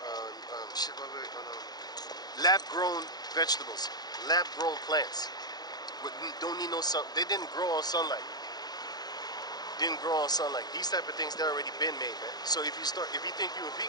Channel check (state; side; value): late; right; 0.19 ms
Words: lab grown vegetables, lab grown plants, don't need no sun. They didn't grow on sunlight. Didn't grow on sunlight. These type of things, they're already been made, man. So if you think you're a